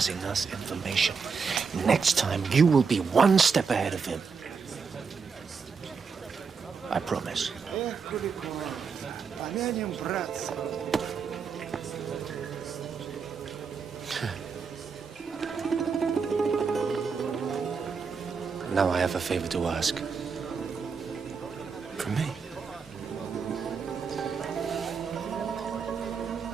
us information. Next time, you will be one step ahead of him. I promise. Now I have a favor to ask. From me?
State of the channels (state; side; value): quieter; left; 5.6 dB